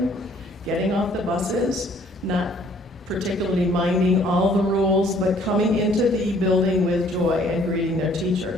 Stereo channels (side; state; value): both; normal; correlation 0.60